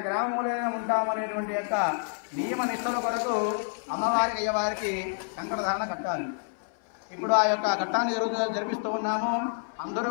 గ్రామంలోనే ఉంటాము అనేటువంటి యొక్క నియమ నిష్టల కొరకు అమ్మవారికి అయ్యవారికి కంకణ ధారణ కట్టాలి. ఇప్పుడు ఆ యొక్క ఘట్టాన్ని జరిపిస్తూ ఉన్నాము. అందరూ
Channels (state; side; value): silent; right; 59 dB below the other